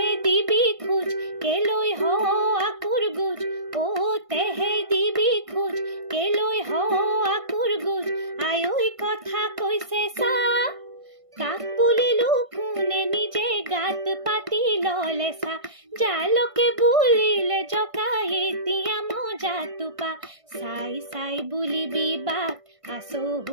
দিবি খোজ কেলৈ হ আকুৰ গুজ অ তেহে দিবি খোজ কেলৈ হ আকুৰ গুজ আয়ৈ কথা কৈছে চা কাক বুলিলো কোনে নিজে গাত পাতি ললে চা জালকে বুলিলে জকাই এতিয়া মজা টোপা চাই চাই বুলিবি বাট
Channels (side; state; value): left; late; 1.5 ms